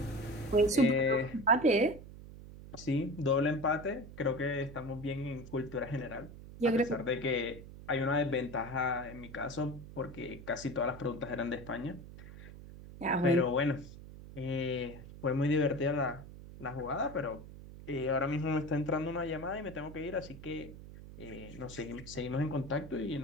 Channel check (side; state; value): right; noise; hum, 15 dB below the sound